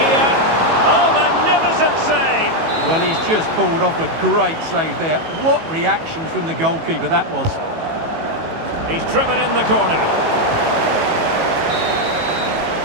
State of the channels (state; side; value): late; left; 18 ms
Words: Oh, magnificent save! Well, he's just pulled off a great save there. What reaction from the goalkeeper that was. He's driven in the corner.